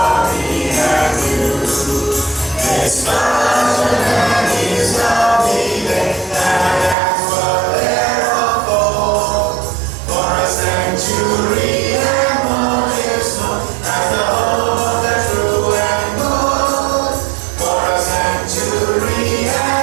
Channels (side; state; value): left; drops out; at 7.0 s